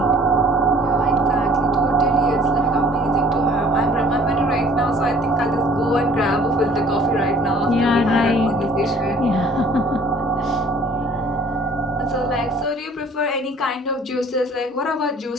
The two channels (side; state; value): both; normal; correlation 0.54